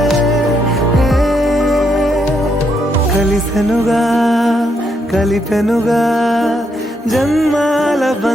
కలిసెనుగా కలిపెనుగా జన్మాల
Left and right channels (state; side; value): normal; both; correlation 0.77